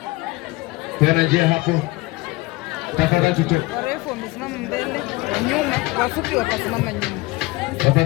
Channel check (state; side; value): quieter; right; 21.9 dB